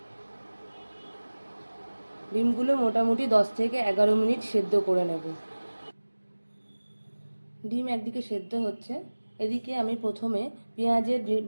ডিমগুলো মোটামুটি 10 থেকে 11 মিনিট সেদ্ধ করে নেব। ডিম একদিকে সেদ্ধ হচ্ছে, এদিকে আমি প্রথমে পেঁয়াজের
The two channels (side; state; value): both; inverted; correlation -1.00